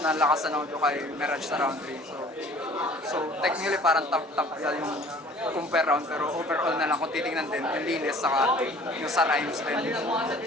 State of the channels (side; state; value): both; normal; correlation 0.51